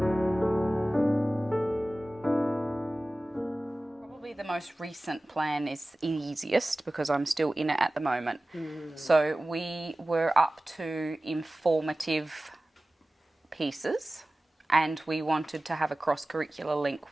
Probably the most recent plan is easiest because I'm still in it at the moment. So we were up to informative pieces and we wanted to have a cross-curricular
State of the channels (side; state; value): both; normal; correlation 0.97